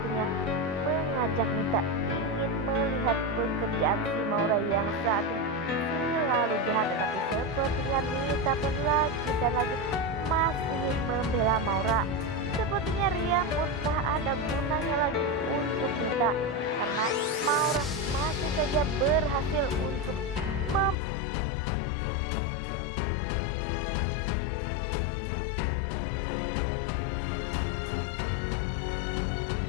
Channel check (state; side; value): drops out; right; at 21.0 s